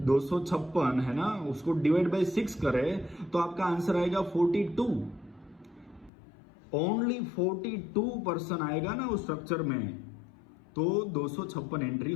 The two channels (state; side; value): drops out; right; at 6.1 s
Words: 256 है ना, उसको डिवाइड बाय 6 करें तो आपका आंसर आएगा 42। ओनली 42 पर्सन आएगा ना उस स्ट्रक्चर में, तो 256 एंट्री